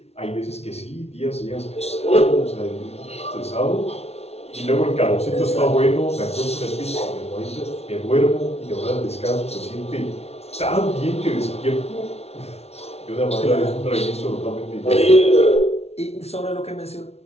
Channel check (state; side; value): late; right; 0.31 ms